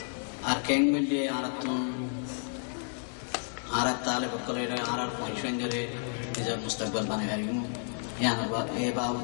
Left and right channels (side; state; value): right; silent; 55 dB below the other